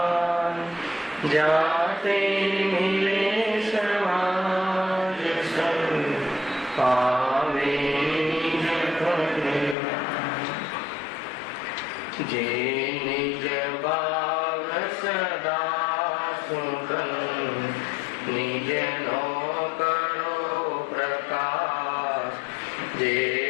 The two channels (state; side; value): drops out; right; at 9.8 s